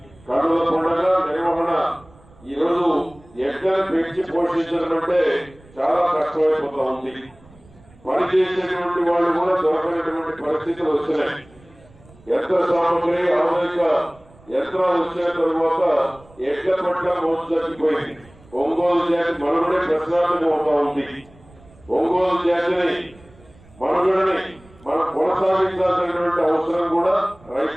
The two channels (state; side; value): noise; right; rumble, 26 dB below the sound